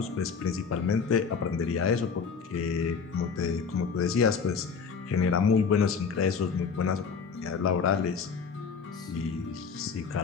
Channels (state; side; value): quieter; right; 5.7 dB